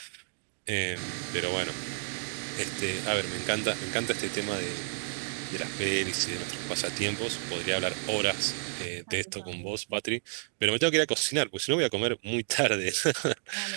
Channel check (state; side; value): silent; left; digital silence